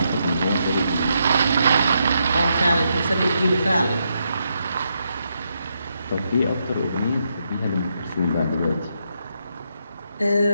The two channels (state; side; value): inverted; both; correlation -0.81